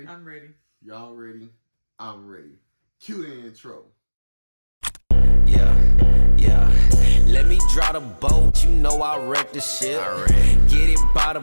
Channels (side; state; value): both; inverted; correlation -1.00